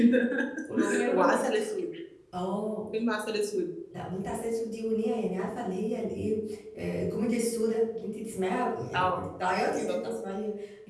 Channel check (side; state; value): both; identical; correlation 1.00